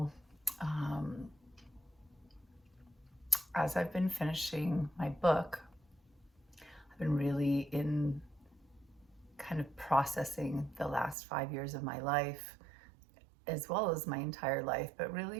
as I've been finishing my book, I've been really in kind of processing the last 5 years of my life, as well as my entire life, but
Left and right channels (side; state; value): left; drops out; at 11.2 s